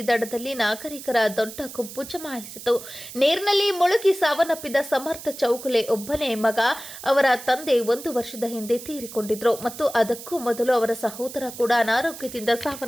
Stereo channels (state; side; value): noise; right; hiss, 13 dB below the sound